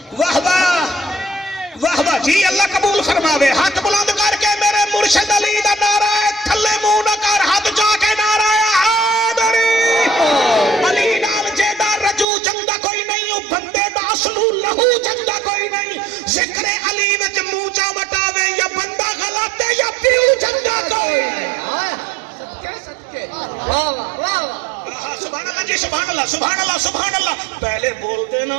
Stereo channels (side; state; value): left; drops out; at 12.2 s